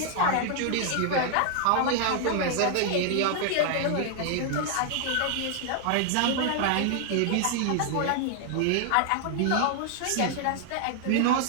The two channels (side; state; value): both; different; correlation 0.00